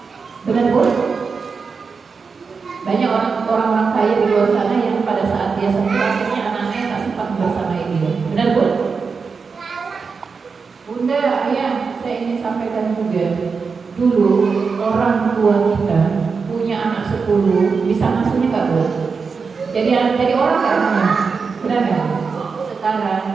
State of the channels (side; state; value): left; quieter; 5.1 dB